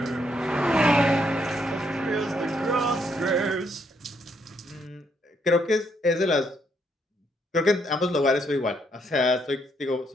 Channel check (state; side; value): normal; both; correlation 0.74